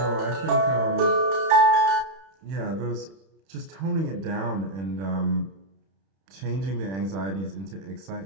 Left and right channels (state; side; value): late; left; 31 ms